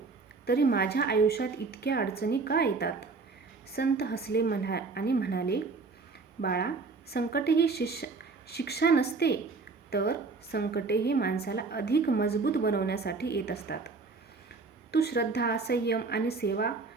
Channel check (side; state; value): left; quieter; 4.2 dB